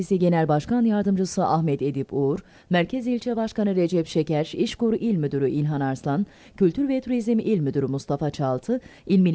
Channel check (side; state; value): both; identical; correlation 1.00